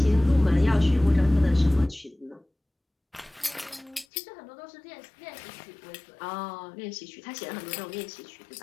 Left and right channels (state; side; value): drops out; right; at 4.0 s